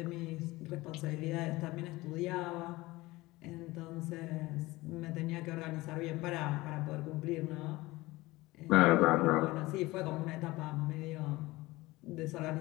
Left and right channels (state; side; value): quieter; right; 20.2 dB